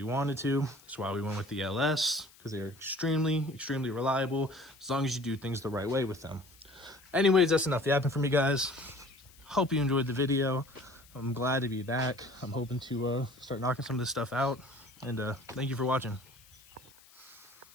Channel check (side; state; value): left; noise; hiss, 25 dB below the sound